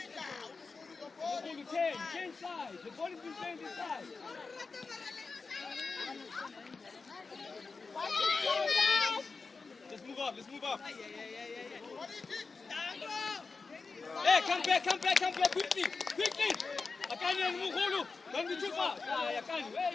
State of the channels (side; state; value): right; quieter; 4.4 dB